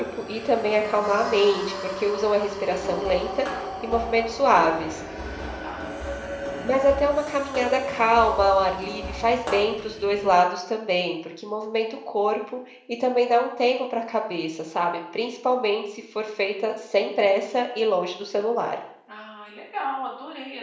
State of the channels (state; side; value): identical; both; correlation 1.00